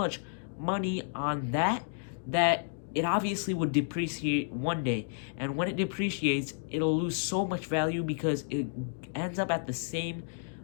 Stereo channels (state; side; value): silent; right; digital silence